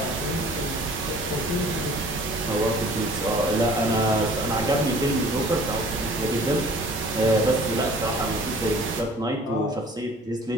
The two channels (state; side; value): normal; both; correlation 0.50